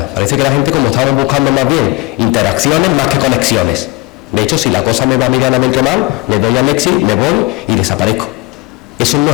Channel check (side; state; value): right; quieter; 23.1 dB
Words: Parece que la gente, como estamos buscando más bien interacciones más que conexiones. De hecho, si la cosa me va medianamente mal, le doy al exit, me voy y desaparezco. Eso no